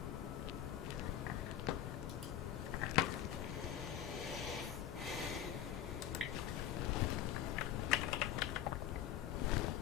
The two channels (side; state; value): right; quieter; 11.1 dB